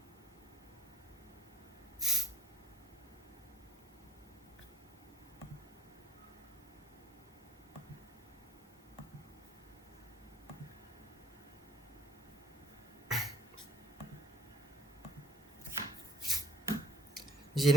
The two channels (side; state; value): both; normal; correlation 0.56